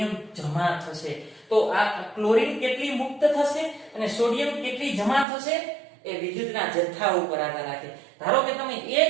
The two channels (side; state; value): left; drops out; at 5.2 s